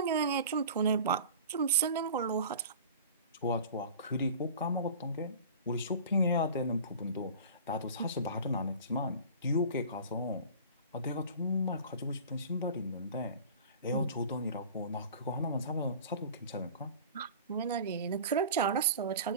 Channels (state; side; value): inverted; both; correlation -0.39